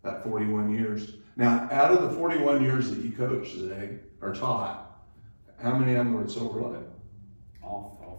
that 41 years. Now, out of the 41 years that you coached today, or taught, how many of them were at Silver Lake? All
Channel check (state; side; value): inverted; both; correlation -1.00